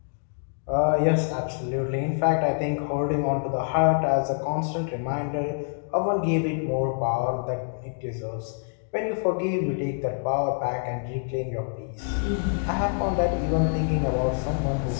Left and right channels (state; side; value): silent; right; digital silence